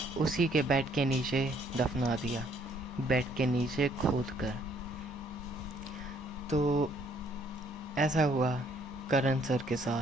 उसी के बेड के नीचे दफना दिया, बेड के नीचे खोद कर। तो ऐसा हुआ करण सर के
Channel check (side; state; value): both; normal; correlation 0.65